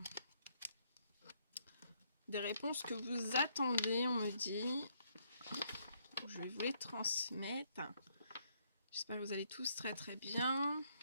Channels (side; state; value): both; inverted; correlation -0.71